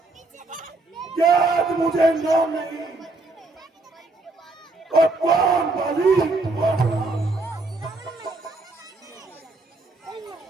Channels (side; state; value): left; quieter; 3.2 dB